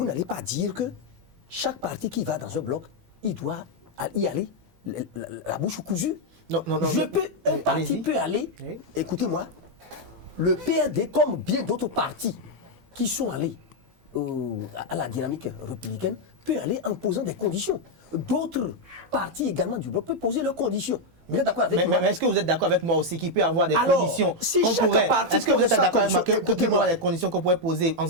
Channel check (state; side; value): late; left; 18 ms